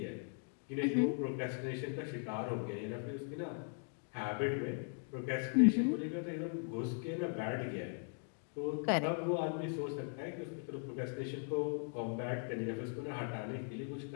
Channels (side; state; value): right; silent; 52 dB below the other